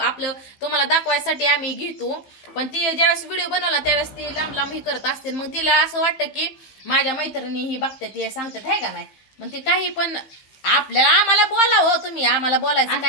आपलं तुम्हाला दाखवायसाठी आम्ही घेतो पण ती ज्यावेळेस व्हिडिओ बनवला त्यावेळेस ती लांब लांब ही करत असते. मग तिला असं वाटतं की माझ्या मैत्रिणी ही बघतात हे सांगतात आहे का नाही. मग ती काही पण आपल्याला आम्हाला बोला हो तुम्ही आम्हाला बोलायचं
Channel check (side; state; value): right; late; 15 ms